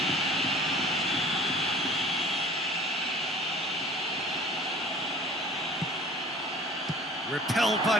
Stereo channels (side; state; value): both; normal; correlation 0.47